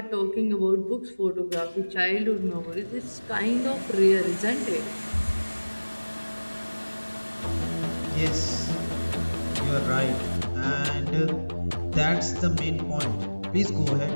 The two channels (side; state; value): both; inverted; correlation -1.00